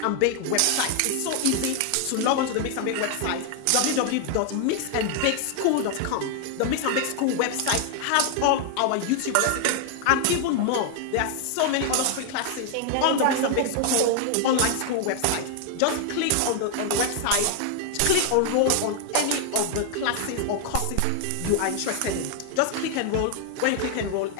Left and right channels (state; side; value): different; both; correlation 0.00